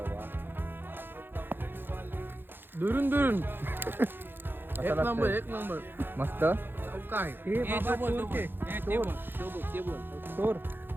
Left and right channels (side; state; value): left; late; 0.10 ms